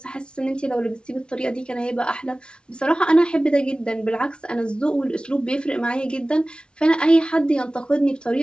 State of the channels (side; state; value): right; late; 0.056 ms